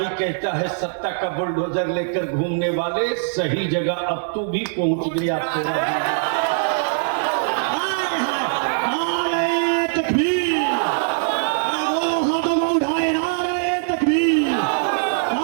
कहता है सत्ता का बुलडोजर लेकर घूमने वाले, सही जगह अब तू भी पहुंच गया।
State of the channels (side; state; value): left; silent; digital silence